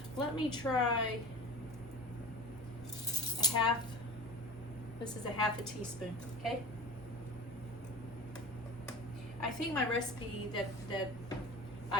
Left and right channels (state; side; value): normal; both; correlation 0.36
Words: Let me try a half, this is a half a teaspoon, okay? I think my recipe that